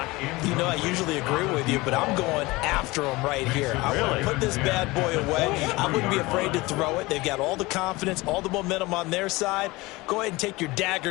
You know, I usually agree with you, but I'm going after them right here. I want to put this bad boy away. I wouldn't be afraid to throw it. They've got all the confidence, all the momentum on their side. Go ahead and take your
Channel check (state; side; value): quieter; right; 21.8 dB